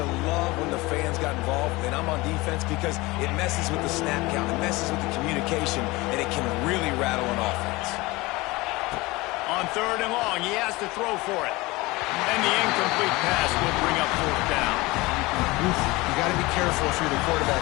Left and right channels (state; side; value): quieter; right; 21.9 dB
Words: love when the fans got involved, and I'm on defense, because it messes with the snap count, it messes with the communication, and it can really rattle an offense. On third and long, he has to throw for it. And the incomplete pass will bring up fourth down. You got to be careful if you're the quarterback